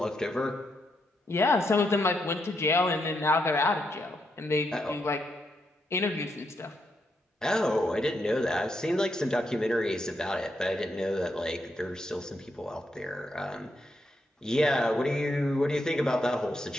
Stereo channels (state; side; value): normal; both; correlation 0.80